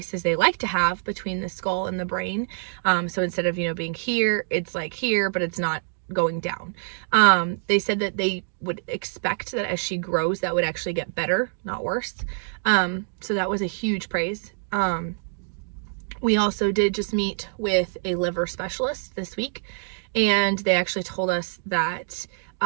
as they like to have between the skull and the brain. So instead of, you know, being here, it's like here, but it's not going down. They said that they would expect that as she grows, that would actually get better, not worse. So that was a huge praise. We also did just meet with a liver specialist this week, and they actually told us that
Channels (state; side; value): silent; left; digital silence